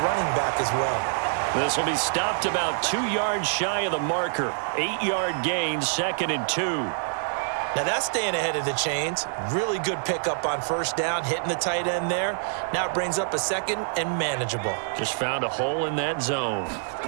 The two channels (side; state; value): left; silent; 60 dB below the other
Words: back as well. This will be stopped about 2 yards shy of the marker. 8-yard gain, 2nd and 2. Now that's staying ahead of the chains. Really good pickup on 1st down, hitting the tight end there. Now it brings up a 2nd and manageable. Just found a hole in that zone.